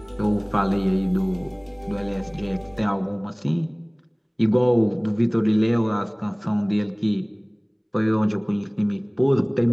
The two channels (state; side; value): identical; both; correlation 1.00